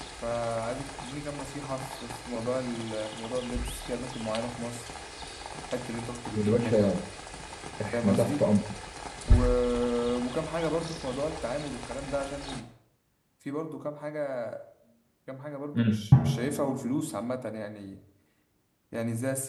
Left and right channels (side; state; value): both; identical; correlation 1.00